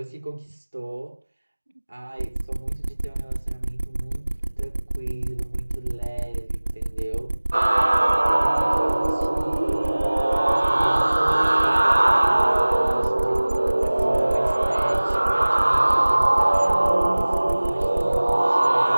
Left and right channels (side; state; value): both; inverted; correlation -1.00